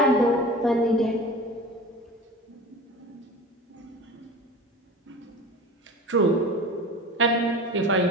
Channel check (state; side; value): normal; both; correlation 0.36